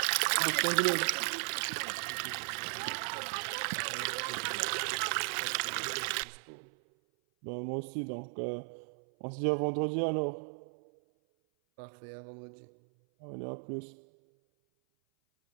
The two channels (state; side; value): silent; left; 54 dB below the other